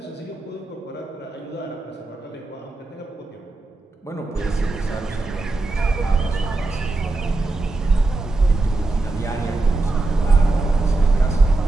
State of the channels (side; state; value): left; quieter; 3.2 dB